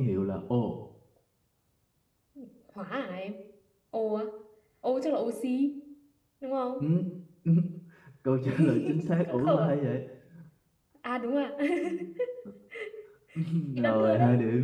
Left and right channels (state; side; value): identical; both; correlation 1.00